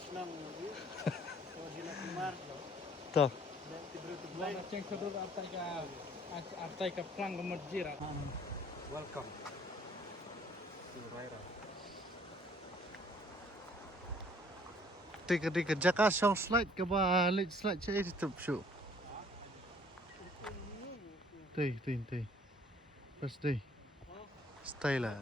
review. So sila kumar. to Mana ceng kedua artai ka plang ke masjid. Welcome to Raira. tiga jaka song slide ke balik slide chế thì tập sự tì pas đi stay là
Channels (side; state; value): both; normal; correlation 0.58